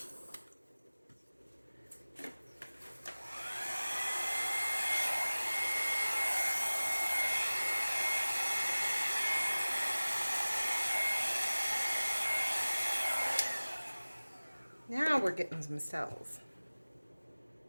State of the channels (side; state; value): both; inverted; correlation -1.00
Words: Now we're getting some cells.